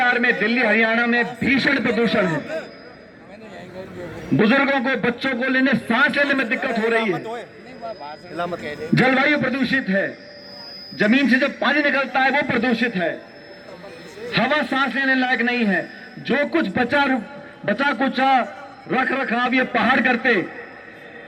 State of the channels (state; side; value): identical; both; correlation 1.00